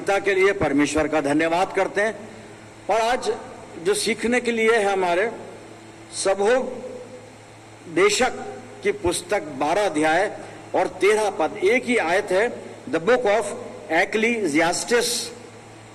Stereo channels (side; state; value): both; identical; correlation 1.00